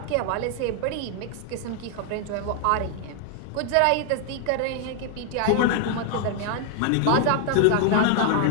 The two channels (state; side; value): different; both; correlation 0.00